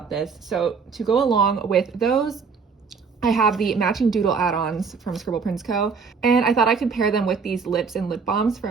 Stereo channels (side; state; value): left; quieter; 5.4 dB